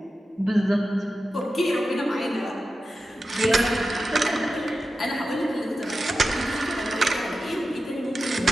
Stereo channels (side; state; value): both; normal; correlation 0.92